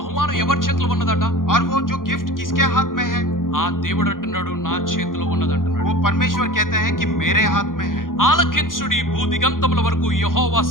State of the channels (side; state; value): right; late; 0.90 ms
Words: ఎవరి చేతిలో ఉన్నదట? और वो जो गिफ्ट किसके हाथ में है? ఆ దేవుడు అంటున్నాడు నా చేతిలో ఉన్నదంటున్నాడు. वो परमेश्वर कहते हैं कि मेरे हाथ में है। ఆలకించుడి, భూదిగంతముల వరకు యెహోవా